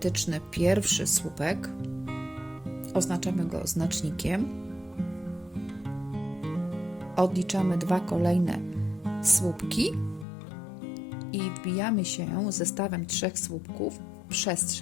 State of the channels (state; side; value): drops out; right; at 10.2 s